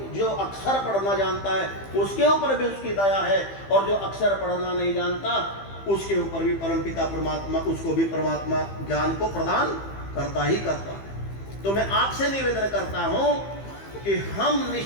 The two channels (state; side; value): late; right; 15 ms